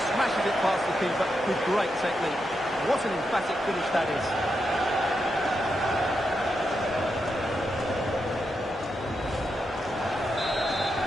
smashes it past the keeper with great technique. What an emphatic finish that is.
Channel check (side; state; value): both; normal; correlation 0.85